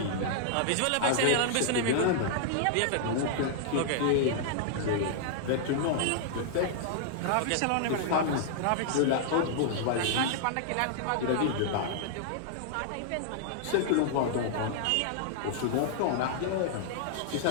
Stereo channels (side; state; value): both; different; correlation -0.01